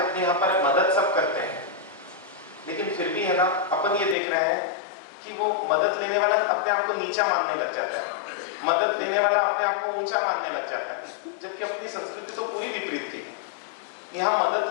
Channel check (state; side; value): drops out; right; at 4.2 s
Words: यहाँ पर मदद सब करते हैं, लेकिन फिर भी है ना, अपन ये देख रहे हैं कि वो मदद लेने वाला अपने आप को नीचा मानने लग जाता है, मदद देने वाला अपने आप को ऊंचा मानने लग जाता है, जबकि अपनी संस्कृति तो पूरी विपरीत थी। यहाँ